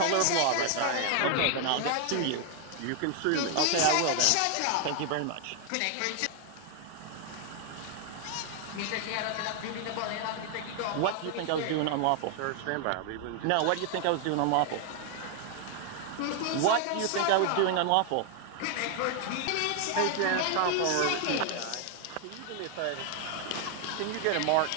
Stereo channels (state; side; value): different; both; correlation 0.00